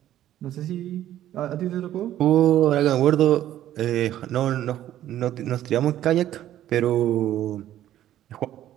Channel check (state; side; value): quieter; left; 12.4 dB